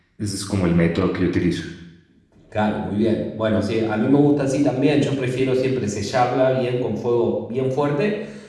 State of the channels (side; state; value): both; identical; correlation 1.00